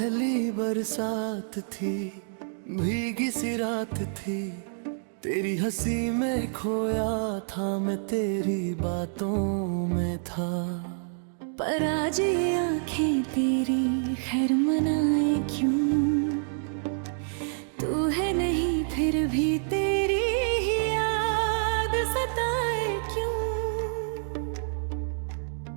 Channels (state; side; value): silent; left; digital silence